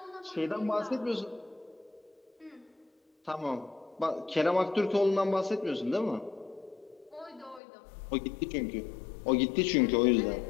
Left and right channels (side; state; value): right; drops out; at 7.6 s